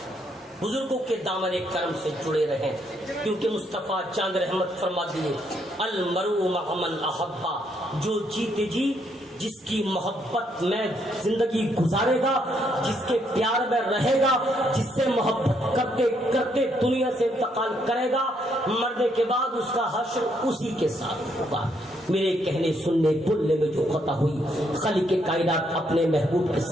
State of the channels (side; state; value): both; normal; correlation 0.73